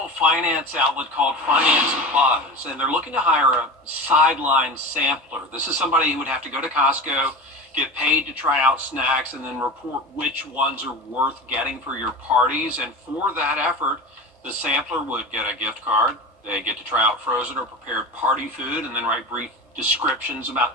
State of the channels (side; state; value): both; normal; correlation 0.30